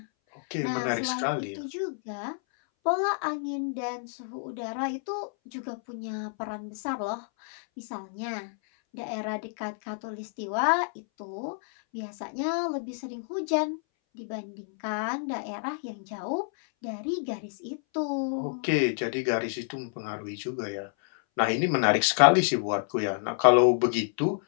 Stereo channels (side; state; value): right; silent; 59 dB below the other